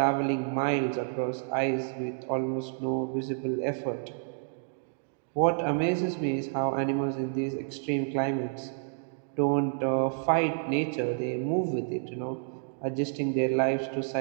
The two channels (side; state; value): left; silent; digital silence